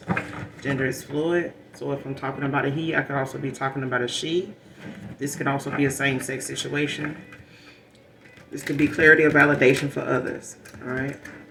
Gender is fluid. So if I'm talking about a he, I could also be talking about a she. This could also be a same-sex situation. This could be clarity or validation for others. All right?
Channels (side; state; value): both; identical; correlation 1.00